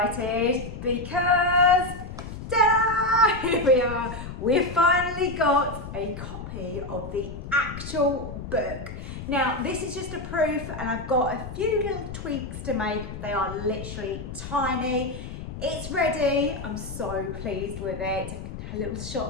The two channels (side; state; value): left; noise; rumble, 9 dB below the sound